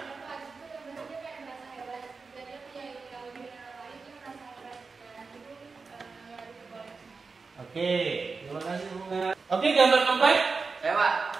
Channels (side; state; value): left; quieter; 4.5 dB